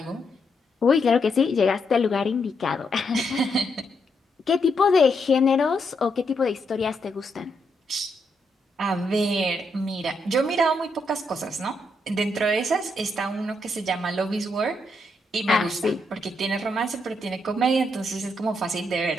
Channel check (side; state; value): both; normal; correlation 0.79